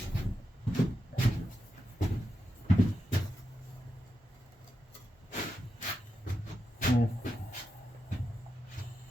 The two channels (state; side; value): normal; both; correlation 0.88